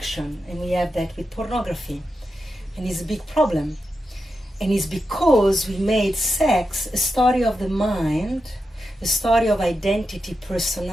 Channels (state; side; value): normal; both; correlation 0.89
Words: And we have that with pornography. And it's a big problem. And it's because we made sex a story of the mind, a story of identity,